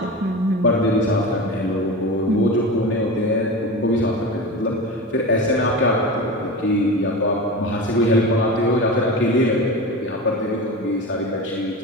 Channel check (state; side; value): normal; both; correlation 0.27